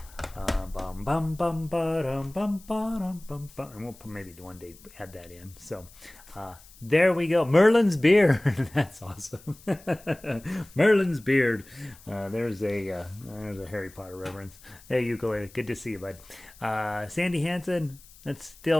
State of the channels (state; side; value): noise; left; hiss, 23 dB below the sound